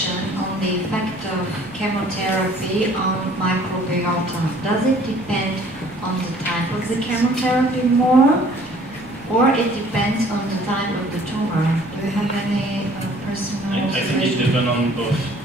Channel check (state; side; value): noise; left; rumble, 24 dB below the sound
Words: on the effect of chemotherapy on microbiota? Does it depend on the type of the chemotherapy more, or it depends on the type of the tumor? Do you have any personal observation? I think it depends on both.